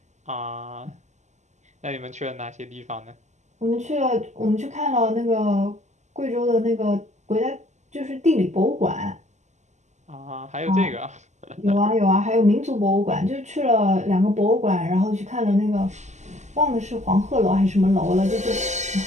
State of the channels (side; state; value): left; late; 0.34 ms